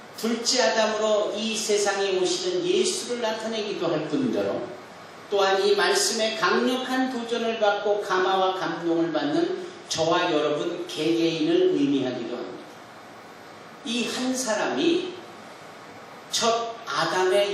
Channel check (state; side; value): identical; both; correlation 1.00